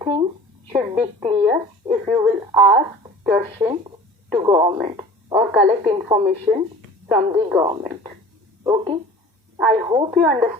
should be clear if you will ask questions to government or collect information from the government. Okay. I hope you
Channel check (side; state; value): both; normal; correlation 0.42